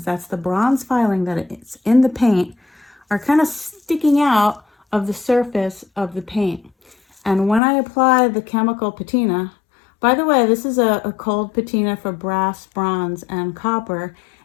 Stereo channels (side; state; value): right; drops out; at 7.6 s